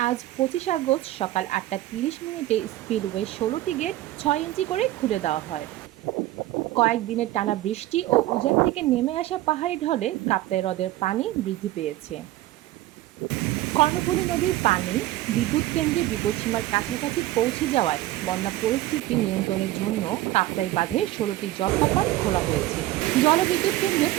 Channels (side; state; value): left; quieter; 16.0 dB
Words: আজ ২৫ আগস্ট সকাল ৮টা ৩০ মিনিটে স্পিলওয়ে ১৬টি গেট ৬ ইঞ্চি করে খুলে দেওয়া হয়। কয়েকদিনের টানা বৃষ্টি ও উজান থেকে নেমে আসা পাহাড়ি ঢলে কাপ্তাই হ্রদের পানি বৃদ্ধি পেয়েছে। কর্ণফুলী নদীর পানি বিদ্যুৎ কেন্দ্রে বিপদসীমার কাছাকাছি পৌঁছে যাওয়ায় বন্যা পরিস্থিতি নিয়ন্ত্রণের জন্য কাপ্তাই বাঁধে ১৬টি জলকপাট খোলা হয়েছে। জলবিদ্যুৎ কেন্দ্রের